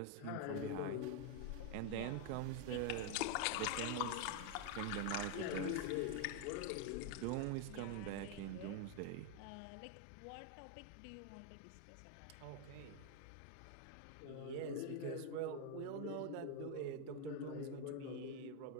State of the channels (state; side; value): different; both; correlation 0.00